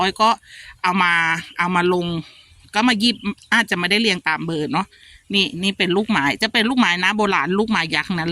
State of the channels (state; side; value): identical; both; correlation 1.00